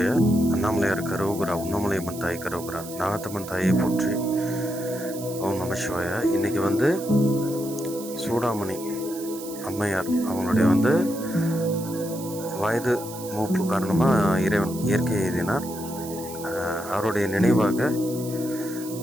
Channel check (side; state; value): right; noise; hiss, 14 dB below the sound